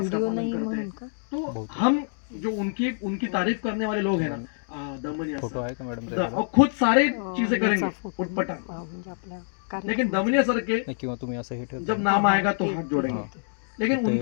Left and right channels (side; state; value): right; silent; digital silence